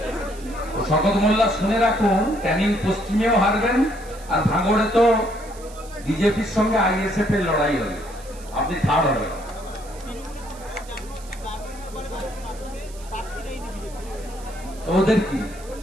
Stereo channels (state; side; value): noise; right; hiss, 21 dB below the sound